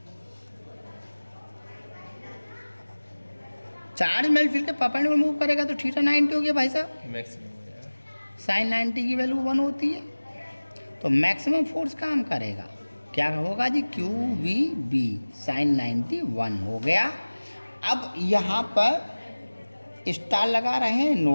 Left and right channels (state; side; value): inverted; both; correlation -1.00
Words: Charge magnetic field के परपेंडिकुलर मूव करेगा तो थीटा 90 हो गया भाई साहब। साइन 90 की वैल्यू 1 होती है, तो मैक्सिमम फोर्स काम करेगा। क्या होगा जी? QVB sin 90 1 हो गया। अब यहाँ पर स्टार लगा रहे हैं,